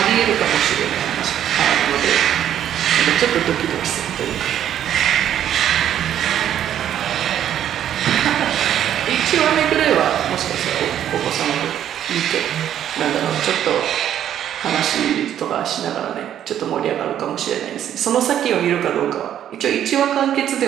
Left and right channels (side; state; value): left; quieter; 10.5 dB